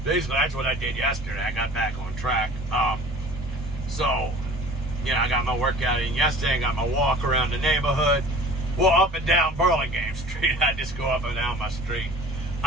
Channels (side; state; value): right; noise; hum, 19 dB below the sound